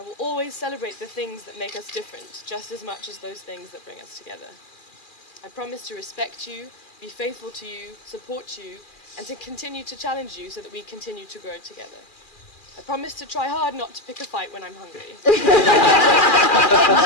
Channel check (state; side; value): late; right; 2.4 ms